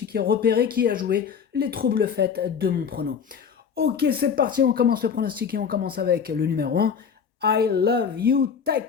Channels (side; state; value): right; quieter; 6.9 dB